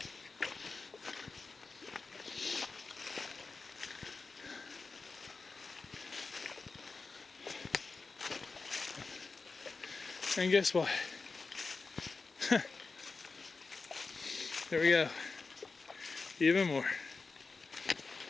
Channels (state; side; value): quieter; right; 4.2 dB